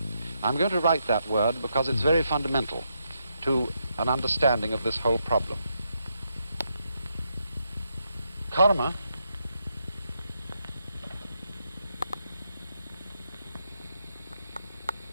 I'm going to write that word because it's very fundamental to an understanding of this whole problem. Karma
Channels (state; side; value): inverted; both; correlation -0.81